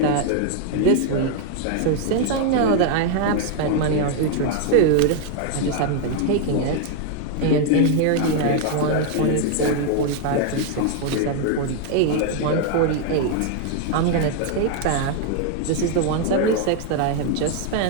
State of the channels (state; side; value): different; both; correlation 0.00